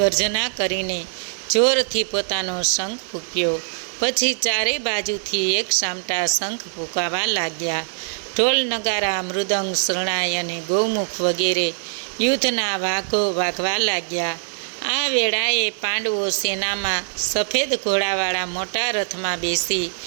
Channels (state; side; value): silent; left; digital silence